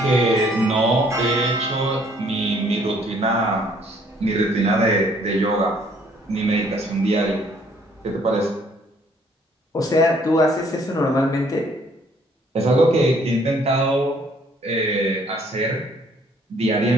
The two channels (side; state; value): both; normal; correlation 0.63